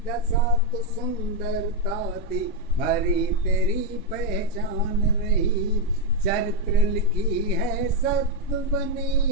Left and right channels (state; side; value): normal; both; correlation 0.02